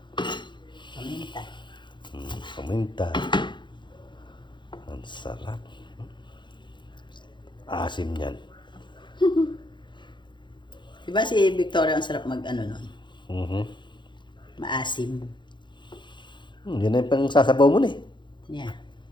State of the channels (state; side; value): late; right; 0.23 ms